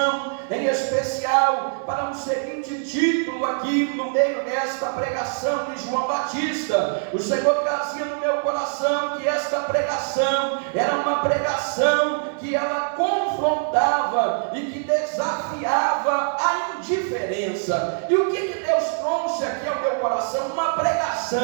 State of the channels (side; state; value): left; silent; digital silence